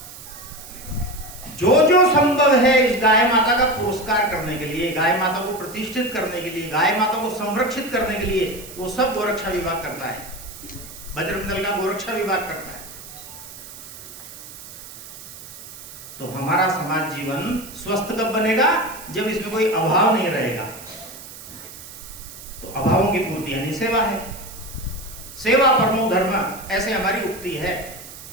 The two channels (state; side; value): noise; right; hiss, 15 dB below the sound